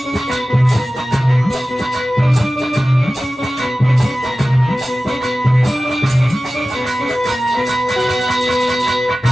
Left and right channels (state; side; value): normal; both; correlation 0.96